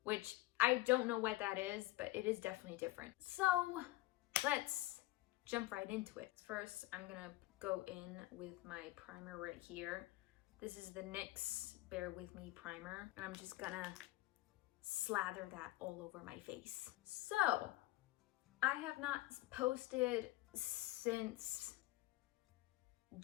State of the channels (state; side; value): quieter; right; 18.4 dB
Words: which I don't know what that is, but it is definitely different. So let's jump right into it. First, I'm gonna go in with my primer right here. This is the NYX Bear With Me primer, and I'm just gonna slather that all over my face. So, I have not posted since